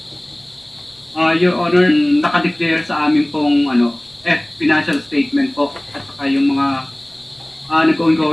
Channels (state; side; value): noise; right; rumble, 29 dB below the sound